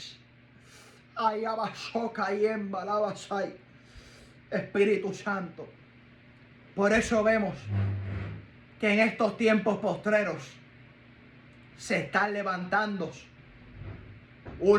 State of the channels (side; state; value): both; identical; correlation 1.00